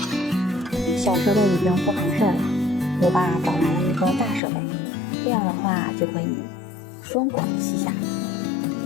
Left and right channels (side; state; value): right; drops out; at 4.4 s